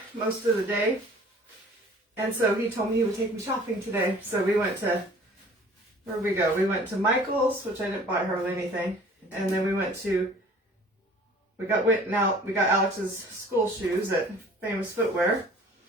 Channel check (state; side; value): normal; both; correlation 0.49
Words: most of the day. And so he told me he would take me shopping today. So we went to, where'd we go? We went to Michael's, which I didn't buy hardly anything. And then we got Alex's school shoes at Famous Footwear.